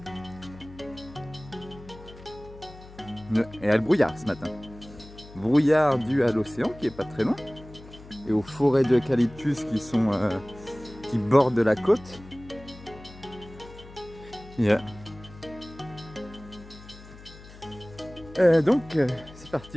Et il y a le brouillard ce matin. Brouillard dû à l'océan qui est pas très loin. Et aux forêts d'eucalyptus qui bordent la côte. Yeah. Donc c'est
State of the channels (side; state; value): left; noise; hum, 19 dB below the sound